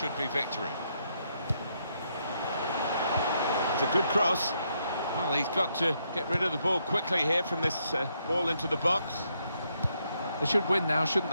be victory. It's a good cross. Well, he's got to get rid of the ball quickly here from this ball into the box. They should win now, shouldn't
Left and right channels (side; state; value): both; inverted; correlation -0.77